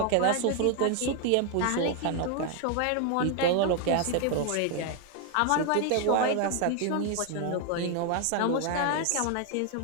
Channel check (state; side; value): different; both; correlation 0.00